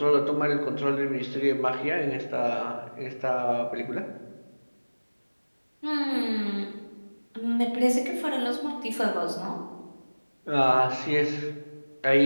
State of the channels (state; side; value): inverted; both; correlation -1.00